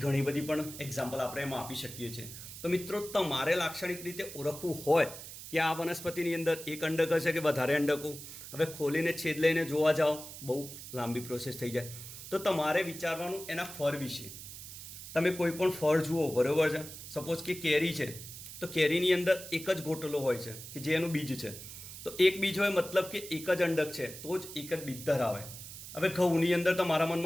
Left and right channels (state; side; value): noise; right; hiss, 12 dB below the sound